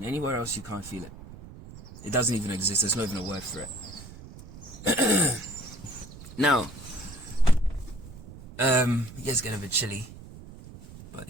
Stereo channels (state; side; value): noise; right; rumble, 16 dB below the sound